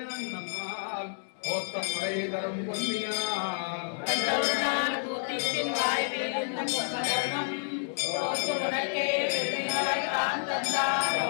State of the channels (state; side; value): silent; right; digital silence